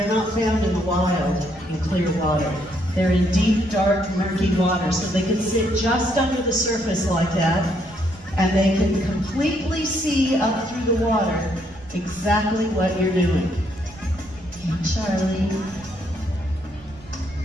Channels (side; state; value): right; noise; rumble, 23 dB below the sound